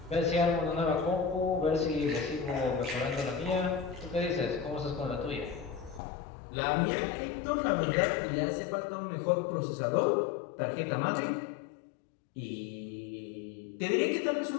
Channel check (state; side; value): drops out; right; at 6.0 s